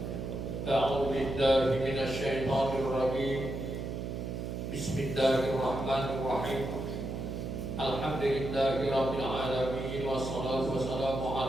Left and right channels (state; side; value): noise; right; hum, 5 dB below the sound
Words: A'udzu billahi minasy syaithanir rajim. Bismillahirrahmanirrahim. Alhamdulillahirabbil alamin wassalatu wassalamu